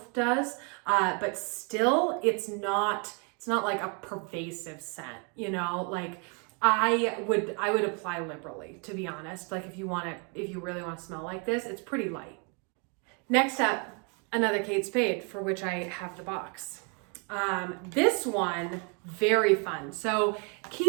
does, but still it's not like a pervasive scent, you know, like I would apply liberally, to be honest. Like if you really want to smell like this, it's pretty light. Next up, another Kate Spade, for which I have the box. This one, very fun. So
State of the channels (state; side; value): quieter; left; 35.8 dB